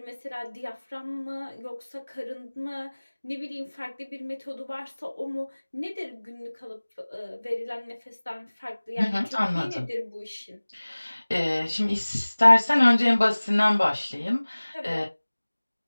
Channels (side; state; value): both; inverted; correlation -1.00